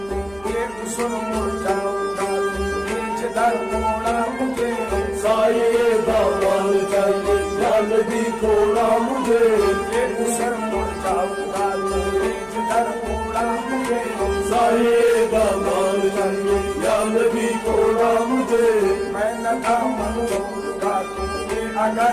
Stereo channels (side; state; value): right; noise; hum, 24 dB below the sound